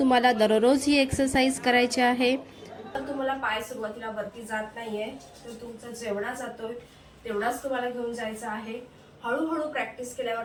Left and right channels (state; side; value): identical; both; correlation 1.00